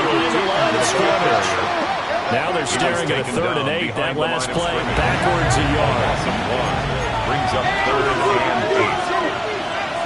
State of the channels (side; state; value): both; identical; correlation 1.00